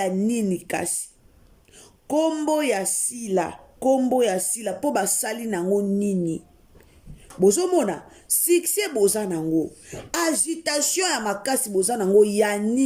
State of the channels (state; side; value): identical; both; correlation 1.00